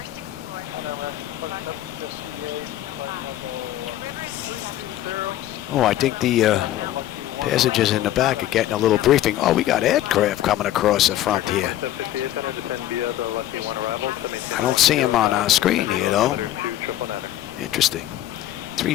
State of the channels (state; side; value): quieter; right; 13.4 dB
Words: Oh, I think the passengers in the back are getting a little briefing. Oh, we got aircraft coming across the front here. I don't see them on our screen here, though. Interesting.